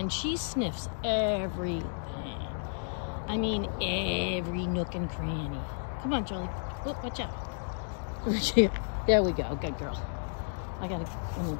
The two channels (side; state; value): right; silent; digital silence